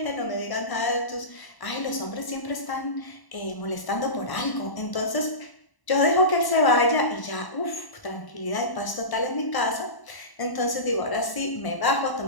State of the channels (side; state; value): right; late; 1.0 ms